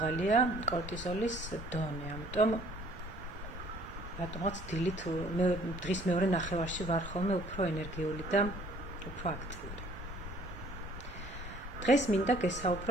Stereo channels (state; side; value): normal; both; correlation 0.57